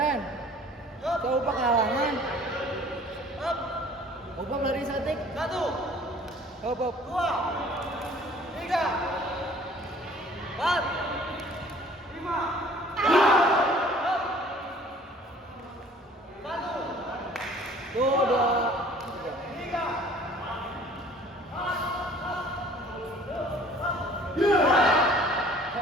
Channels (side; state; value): both; normal; correlation 0.52